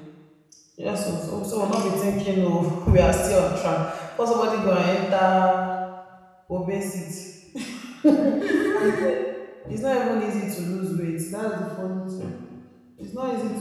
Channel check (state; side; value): identical; both; correlation 1.00